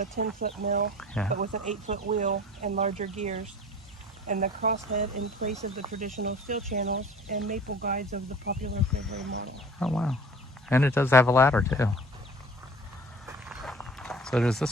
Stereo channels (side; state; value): both; normal; correlation 0.44